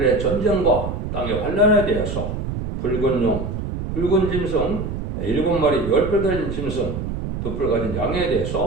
전쟁과 땅의 환란에 대해서, 붉은 용, 붉은 짐승, 7마리 10뿔 달린 짐승, 2뿔 가진 양에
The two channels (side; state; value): right; noise; rumble, 5 dB below the sound